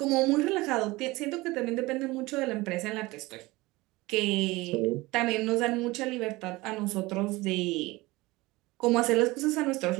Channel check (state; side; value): quieter; left; 21.1 dB